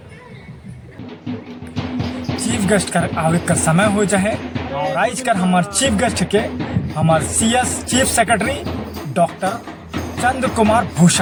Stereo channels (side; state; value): both; identical; correlation 1.00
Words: चीफ गेस्ट कर आवे का समय हो जाए और आज कर हमारे चीफ गेस्ट के हमारे सीएस चीफ सेक्रेटरी डॉक्टर चंद्र कुमार